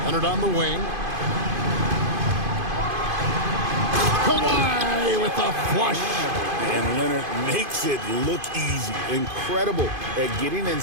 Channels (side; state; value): left; late; 2.5 ms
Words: Leonard on the wing. Kawhi with the flush. And Leonard makes it look easy. Incredible at getting